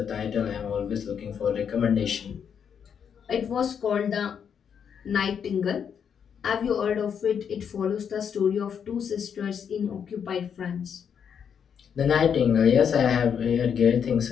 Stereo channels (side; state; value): right; quieter; 7.6 dB